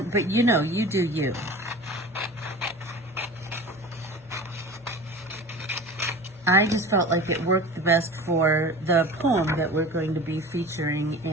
you know, you do you. I just felt like it worked the best for the poem that we're going to be featuring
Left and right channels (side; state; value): both; normal; correlation 0.37